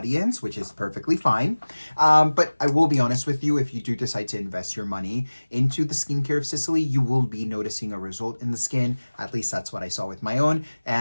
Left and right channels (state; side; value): inverted; both; correlation -1.00